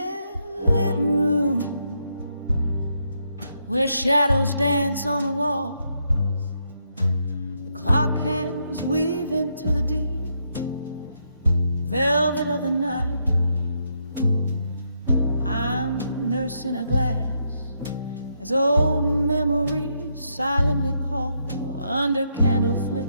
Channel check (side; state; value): both; inverted; correlation -0.78